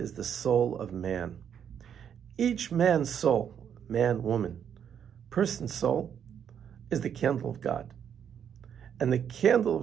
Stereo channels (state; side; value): quieter; left; 8.5 dB